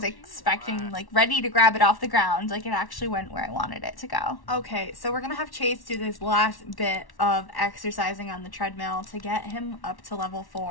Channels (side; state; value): right; late; 1.1 ms